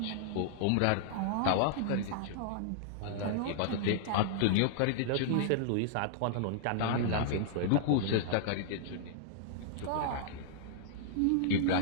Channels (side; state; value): both; different; correlation -0.01